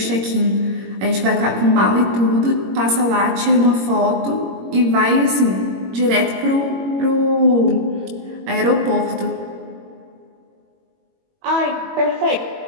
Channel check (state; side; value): late; left; 21 ms